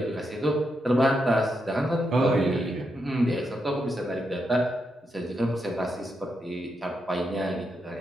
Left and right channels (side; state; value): both; normal; correlation 0.83